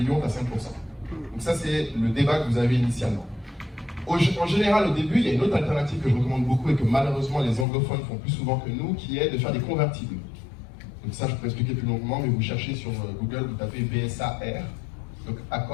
tu as 5%. Donc, ça, c'est le débat que vous avez initialement. En général, au début, il y a une autre alternative que je recommande beaucoup et que malheureusement les anglophones font plus souvent que nous, qui est de faire des convertibles. Donc ça, je peux expliquer plus longuement, mais vous cherchez sur Google, vous tapez BSAR, donc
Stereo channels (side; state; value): right; drops out; at 7.7 s